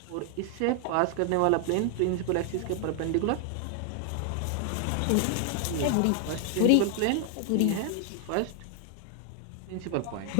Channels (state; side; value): different; both; correlation 0.00